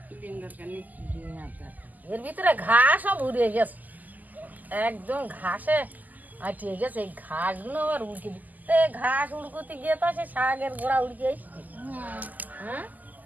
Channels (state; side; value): late; left; 0.082 ms